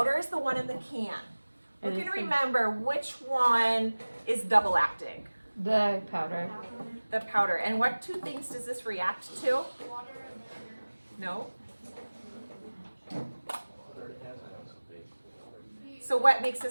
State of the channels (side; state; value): both; inverted; correlation -1.00